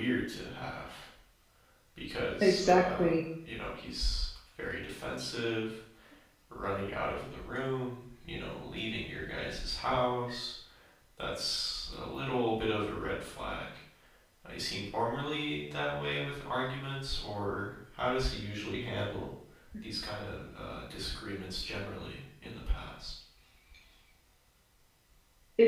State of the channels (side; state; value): both; identical; correlation 1.00